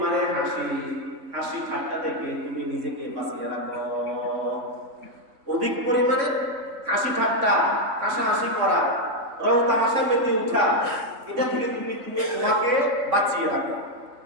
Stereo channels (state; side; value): late; left; 3.5 ms